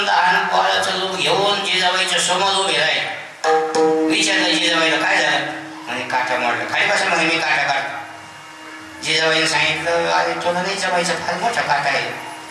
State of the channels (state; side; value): identical; both; correlation 1.00